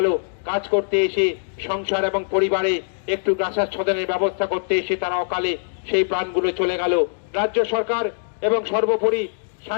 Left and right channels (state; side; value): silent; right; digital silence